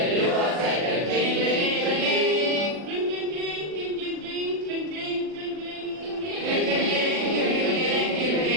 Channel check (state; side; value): late; left; 40 ms